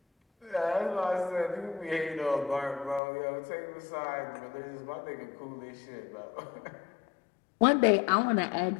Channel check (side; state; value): right; drops out; at 3.0 s